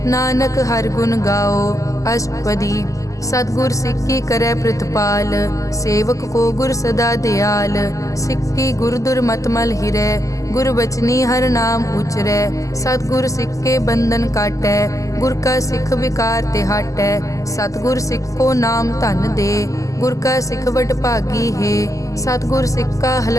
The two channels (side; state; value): right; late; 0.16 ms